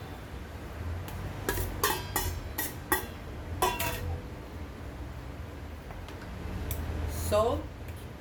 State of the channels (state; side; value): identical; both; correlation 1.00